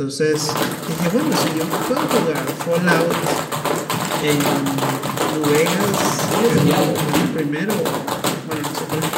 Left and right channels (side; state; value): both; identical; correlation 1.00